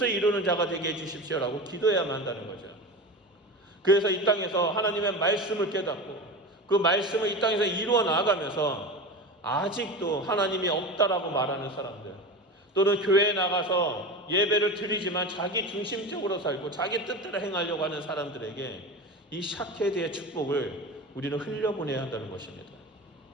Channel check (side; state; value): both; normal; correlation 0.27